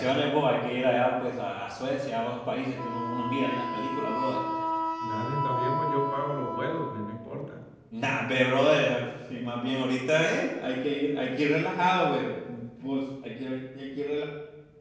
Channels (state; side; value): identical; both; correlation 1.00